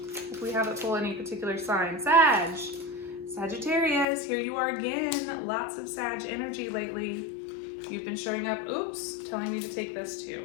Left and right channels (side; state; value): right; drops out; at 4.0 s